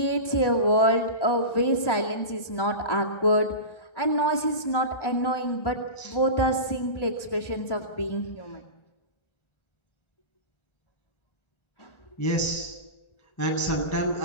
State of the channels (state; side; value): late; right; 1.1 ms